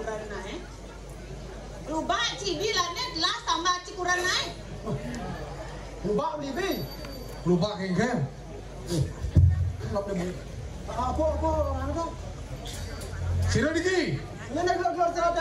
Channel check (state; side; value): identical; both; correlation 1.00